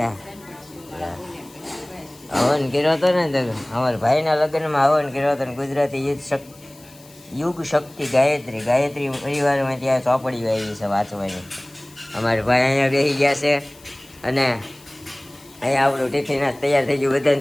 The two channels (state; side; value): noise; left; hiss, 24 dB below the sound